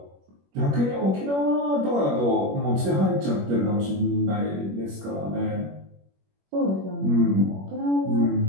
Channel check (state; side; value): late; left; 21 ms